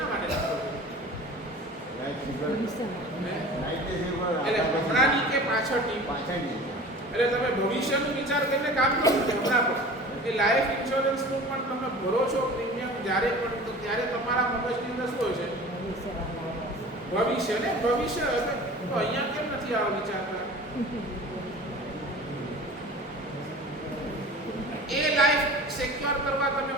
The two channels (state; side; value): normal; both; correlation 0.40